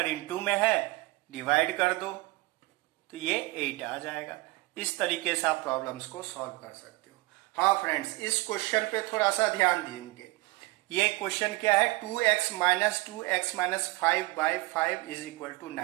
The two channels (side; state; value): left; quieter; 22.5 dB